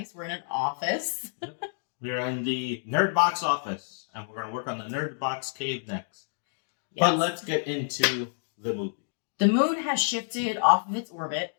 We're in an office. Yep. We're in the Nerdbox office, and we're going to work on the Nerdbox cave next. Yes. But let's get into the movie. The moon has shifted off of its orbit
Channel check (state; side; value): silent; right; digital silence